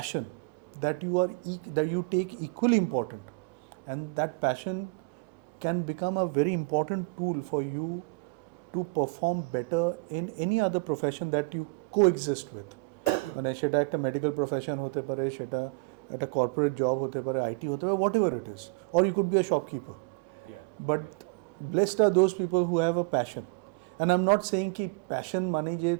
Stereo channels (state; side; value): quieter; left; 31.7 dB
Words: that that you take equally important, and that passion can become a very important tool for you to perform better in any other profession that you coexist with. মানে সেটা একটা medical profession হতে পারে, সেটা একটা corporate job হতে পারে, IT হতে পারে, whatever it is, or you could be a shopkeeper. But blessed are those people who have a passion. And I am not saying কি প্যাশন মানে যে